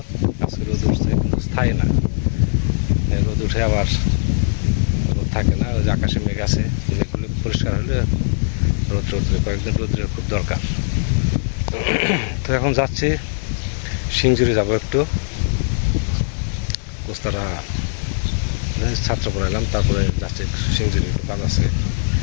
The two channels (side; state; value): right; silent; 61 dB below the other